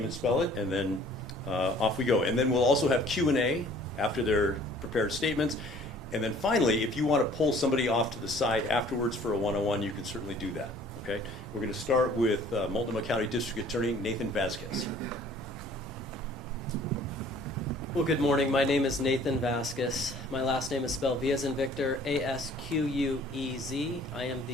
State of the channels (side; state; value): both; normal; correlation 0.53